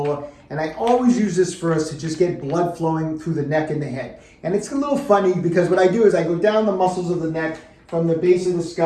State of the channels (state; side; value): identical; both; correlation 1.00